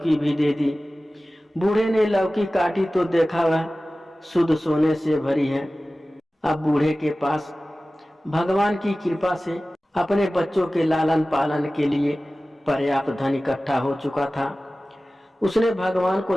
भी दे दी। बूढ़े ने लौकी काटी तो देखा वह शुद्ध सोने से भरी है। अब बूढ़े के पास भगवान की कृपा से अपने बच्चों के लालन पालन के लिए पर्याप्त धन इकट्ठा हो चुका था। उसने भगवान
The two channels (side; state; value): both; normal; correlation 0.96